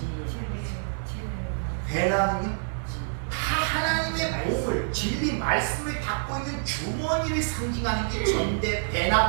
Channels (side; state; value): left; silent; 59 dB below the other